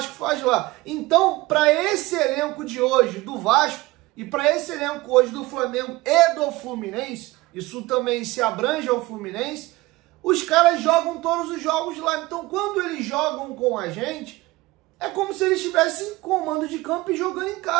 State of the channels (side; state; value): left; quieter; 20.3 dB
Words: faz lá. Então, para esse elenco de hoje do Vasco, e para esse elenco hoje do Flamengo e do Fluminense, isso também se abrange ao Fluminense, os caras jogam todos os jogos lá. Então, quando eles jogam com a gente, é como se eles estivessem com mando de campo e jogando em